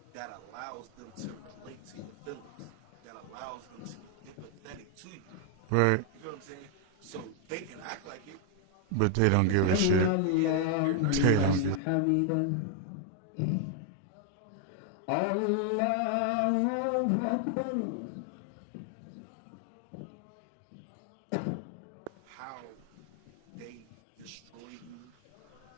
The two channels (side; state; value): both; different; correlation 0.00